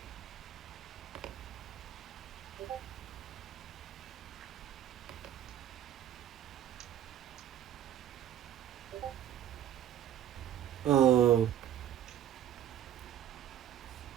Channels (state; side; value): quieter; left; 10.9 dB